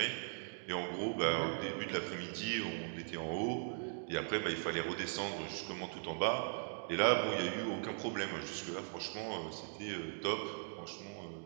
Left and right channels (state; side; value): silent; left; digital silence